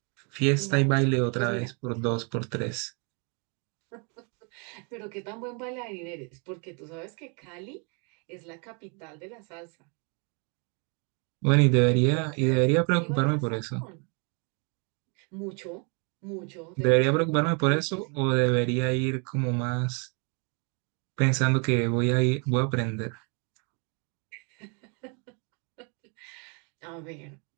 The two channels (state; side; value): quieter; left; 35.8 dB